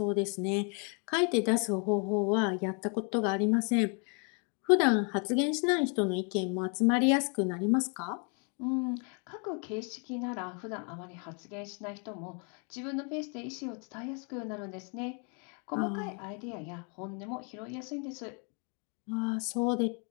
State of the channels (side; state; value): right; quieter; 37.5 dB